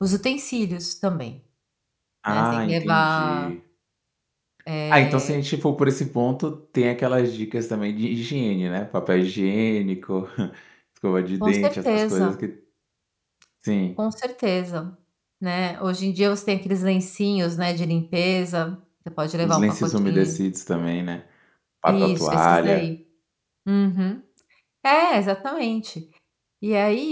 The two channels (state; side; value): identical; both; correlation 1.00